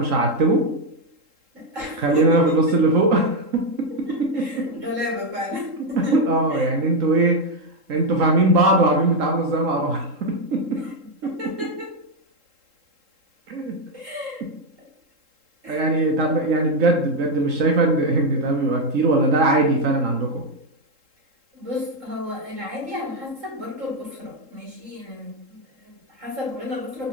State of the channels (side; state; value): left; late; 3.7 ms